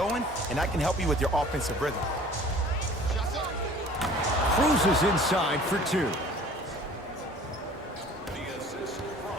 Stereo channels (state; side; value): normal; both; correlation 0.48